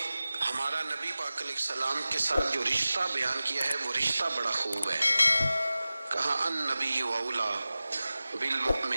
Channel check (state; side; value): inverted; both; correlation -0.96